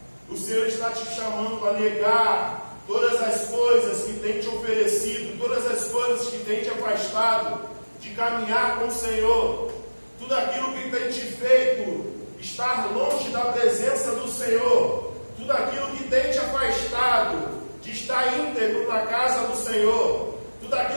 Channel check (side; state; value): both; inverted; correlation -1.00